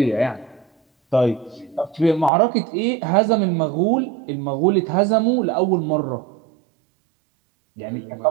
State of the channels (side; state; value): left; drops out; at 2.3 s